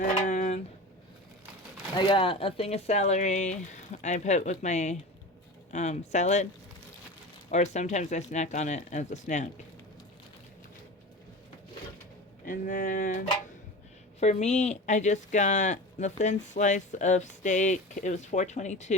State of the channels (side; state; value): both; normal; correlation 0.31